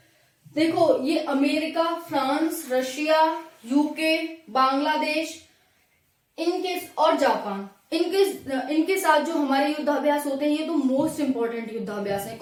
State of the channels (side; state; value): both; identical; correlation 1.00